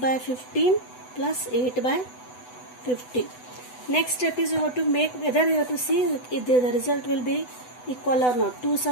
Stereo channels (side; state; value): right; late; 8.0 ms